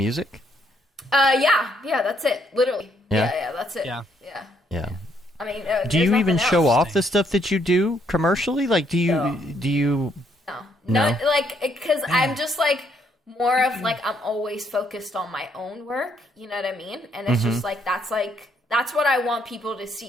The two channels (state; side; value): normal; both; correlation 0.71